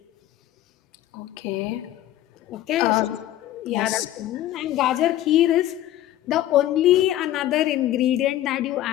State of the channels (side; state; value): right; quieter; 13.6 dB